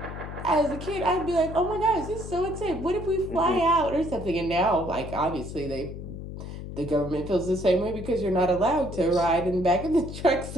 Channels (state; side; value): noise; left; hum, 9 dB below the sound